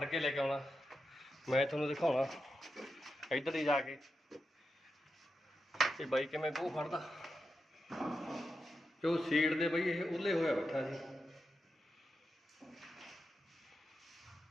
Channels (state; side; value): normal; both; correlation 0.88